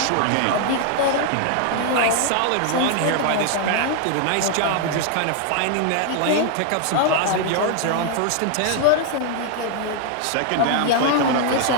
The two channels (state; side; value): different; both; correlation 0.00